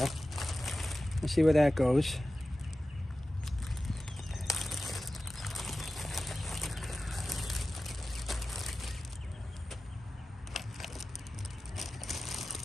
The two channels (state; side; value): normal; both; correlation 0.95